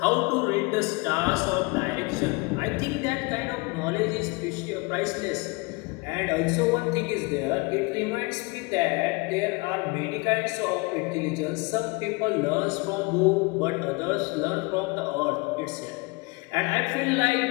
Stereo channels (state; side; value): quieter; right; 27.6 dB